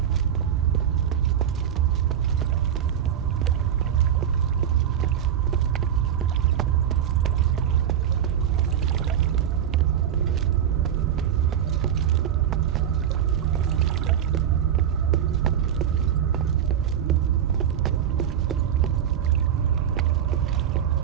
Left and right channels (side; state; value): left; quieter; 9.5 dB